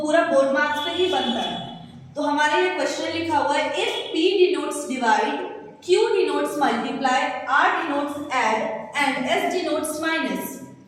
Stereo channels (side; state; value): both; identical; correlation 1.00